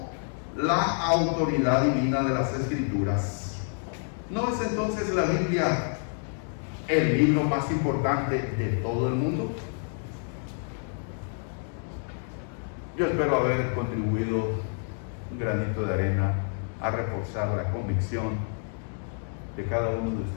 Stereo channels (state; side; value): silent; right; 59 dB below the other